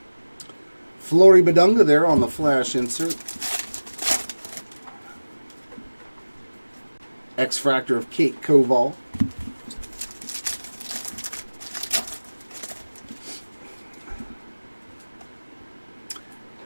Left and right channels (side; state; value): both; inverted; correlation -1.00